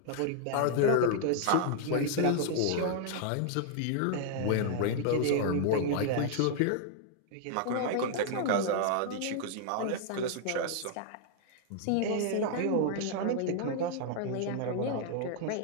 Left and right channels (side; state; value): both; different; correlation -0.01